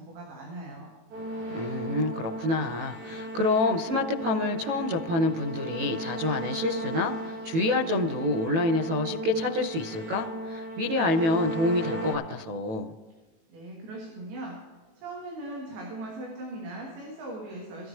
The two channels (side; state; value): left; late; 18 ms